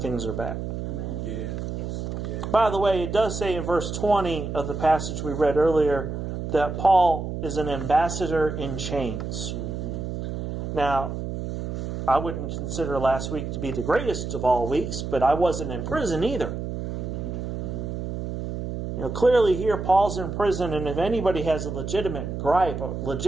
are bad. Amen. Yeah. By the way, it does say in verse 20 of the passage we read earlier that Paul is an ambassador in chains. Now, I wouldn't consider last week to be the greatest of all weeks, but I wasn't in prison either. Clearly here Paul's in prison, and if anybody has a legitimate gripe, a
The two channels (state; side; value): noise; right; hum, 5 dB below the sound